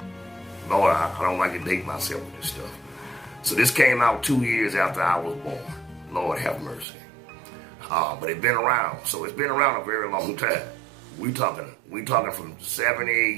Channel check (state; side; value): drops out; left; at 6.9 s